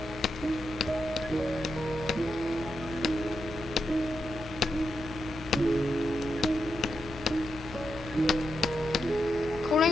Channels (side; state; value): both; normal; correlation 0.86